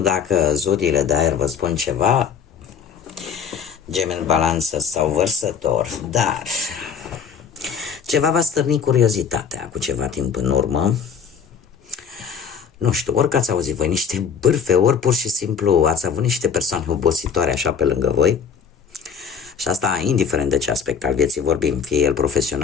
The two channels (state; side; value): quieter; right; 6.8 dB